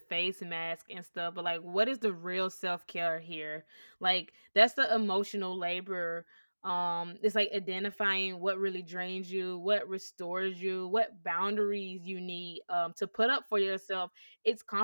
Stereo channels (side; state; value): both; inverted; correlation -1.00